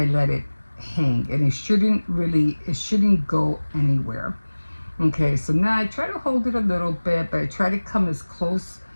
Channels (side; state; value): both; inverted; correlation -1.00